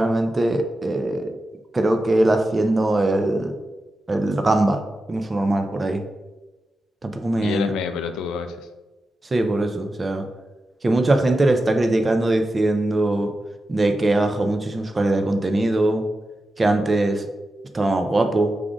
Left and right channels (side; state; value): both; normal; correlation 0.91